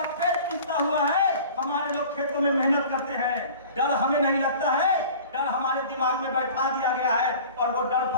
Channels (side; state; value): both; inverted; correlation -0.43